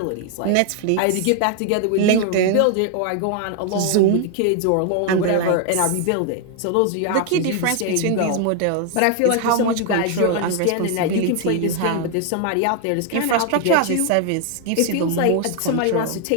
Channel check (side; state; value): both; different; correlation 0.00